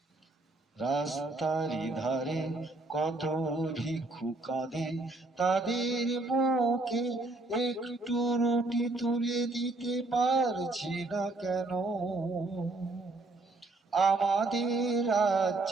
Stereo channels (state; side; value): quieter; left; 3.0 dB